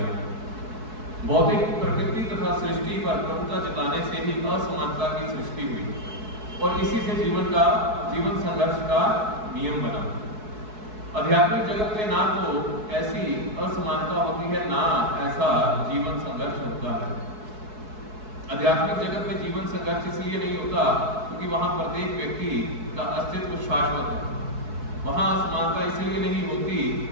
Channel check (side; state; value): left; late; 4.6 ms